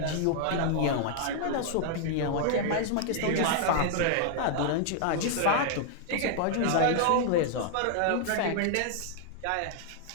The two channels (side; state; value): both; different; correlation 0.00